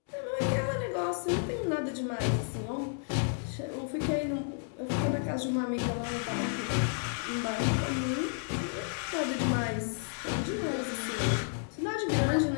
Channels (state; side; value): silent; right; 57 dB below the other